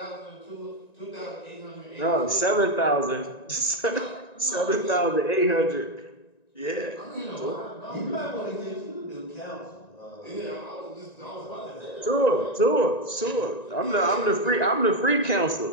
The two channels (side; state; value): right; late; 1.9 ms